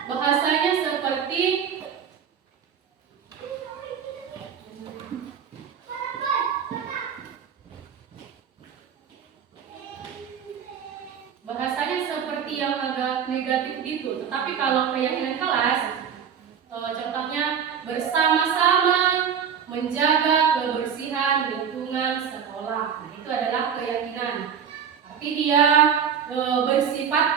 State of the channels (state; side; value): quieter; left; 7.7 dB